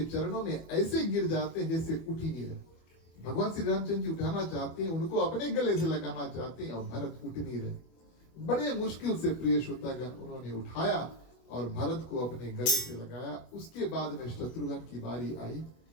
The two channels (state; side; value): late; right; 25 ms